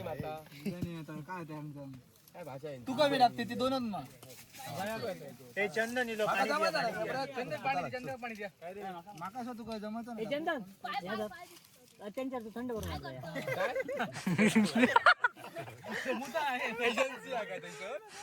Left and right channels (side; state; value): both; identical; correlation 1.00